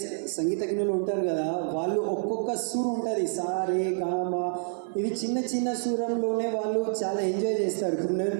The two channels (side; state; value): left; silent; 56 dB below the other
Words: సంగీతజ్ఞులు ఉంటారు కదా, వాళ్ళు ఒక్కొక్క సూర్ ఉంటుంది, సా రే గా మా, ఇవి చిన్న చిన్న సూరంలోనే వాళ్ళు చాలా ఎంజాయ్ చేస్తారు. ఇప్పుడు నేను